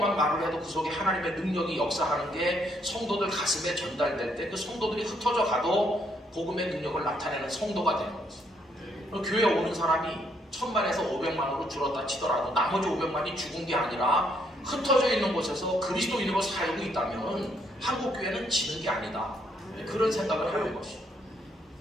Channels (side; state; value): both; normal; correlation 0.72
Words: 말을 해도 그 속에 하나님의 능력이 역사하는 게 성도들 가슴에 전달될 때 그 성도들이 흩어져 가도 복음의 능력을 나타내는 성도가 되는 거죠. 교회에 오는 사람이 1000만에서 500만으로 줄었다 치더라도 나머지 500만이 죽은 게 아니라 흩어져 있는 곳에서 그리스도인으로 살고 있다면 한국교회는 지는 게 아니다. 그런 생각을 하는 것이죠.